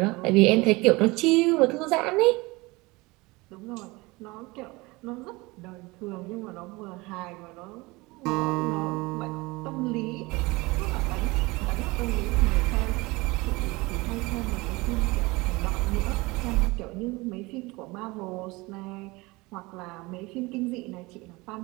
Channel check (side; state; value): left; quieter; 23.2 dB